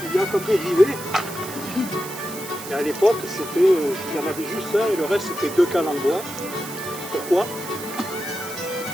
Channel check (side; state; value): right; noise; hiss, 12 dB below the sound